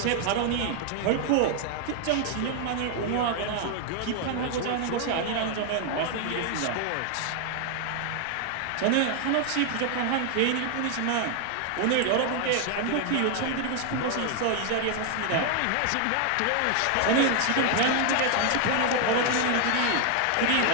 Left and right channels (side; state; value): both; different; correlation 0.00